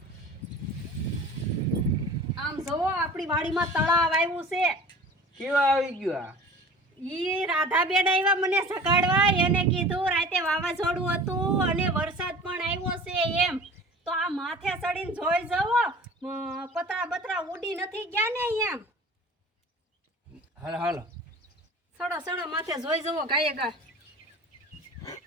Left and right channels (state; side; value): normal; both; correlation 0.42